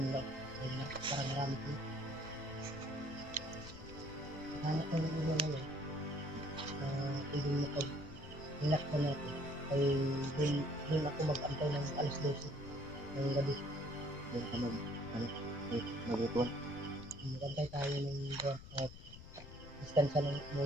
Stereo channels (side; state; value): left; noise; rumble, 15 dB below the sound